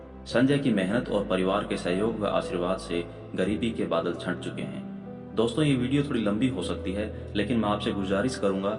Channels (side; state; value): both; identical; correlation 1.00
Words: संजय की मेहनत और परिवार के सहयोग व आशीर्वाद से गरीबी के बादल छंट चुके हैं। दोस्तों, ये वीडियो थोड़ी लंबी हो सकती है, लेकिन मैं आपसे गुजारिश करूंगा